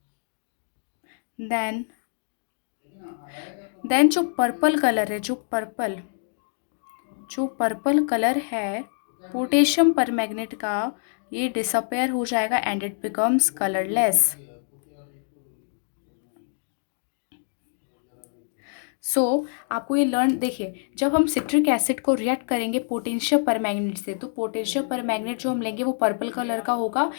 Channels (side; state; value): right; silent; 61 dB below the other